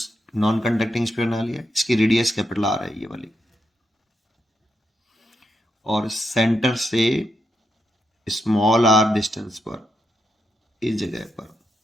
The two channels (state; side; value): normal; both; correlation 0.82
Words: non conducting sphere बना लिया, इसकी radius capital R है ये वाली, और सेंटर से स्मॉल आर डिस्टेंस पर इस जगह पर